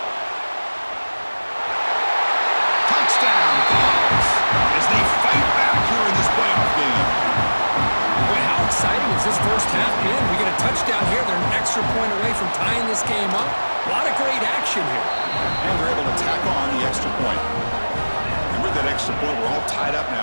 Exciting as this first half been. We get a touchdown here. They're an extra point away from tying this game up. A lot of great action here. And they're able to tack on the extra point. And with that extra point, we're all tied up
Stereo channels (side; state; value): both; inverted; correlation -1.00